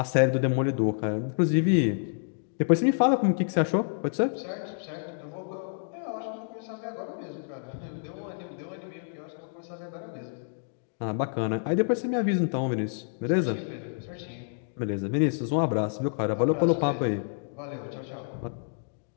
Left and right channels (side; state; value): right; silent; digital silence